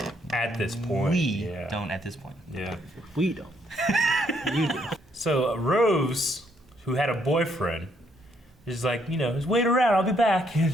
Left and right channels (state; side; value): normal; both; correlation 0.72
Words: At this point, We yeah. don't at this point. Yeah. We don't. You do. So Rose, who had a boyfriend, is like, just wait around, I'll be back. And